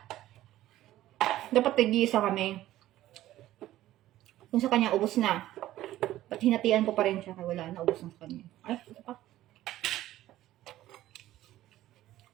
Dapat tig-isa kami. Kung sa kanya, ubos na. Ba't hinatian ko pa rin siya? Kaya wala na, ubos na sa kanya. Ay, ito pa.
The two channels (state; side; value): quieter; left; 14.5 dB